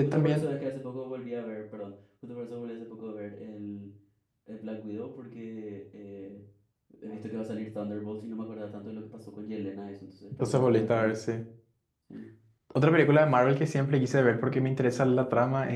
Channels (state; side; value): identical; both; correlation 1.00